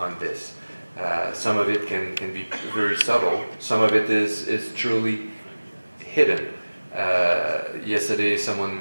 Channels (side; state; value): both; inverted; correlation -1.00